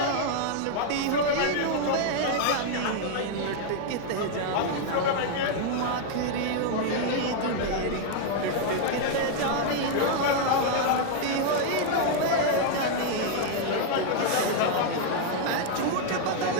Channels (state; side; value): different; both; correlation 0.00